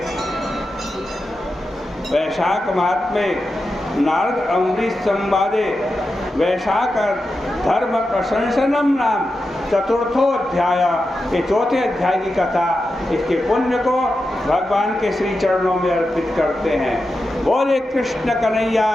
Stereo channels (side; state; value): both; normal; correlation 0.90